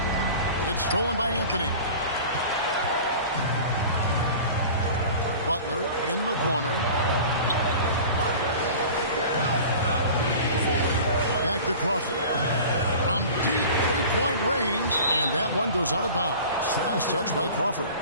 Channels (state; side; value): inverted; both; correlation -0.39